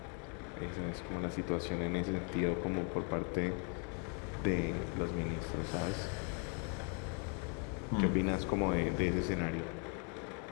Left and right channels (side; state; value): right; quieter; 38.3 dB